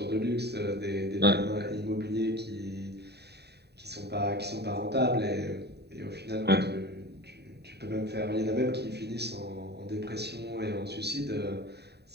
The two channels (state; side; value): late; left; 0.48 ms